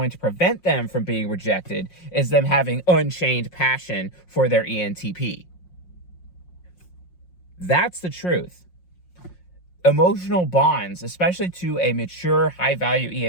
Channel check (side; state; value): right; late; 5.6 ms